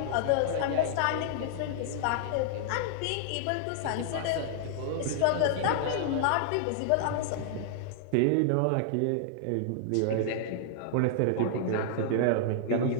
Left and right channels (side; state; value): both; different; correlation -0.01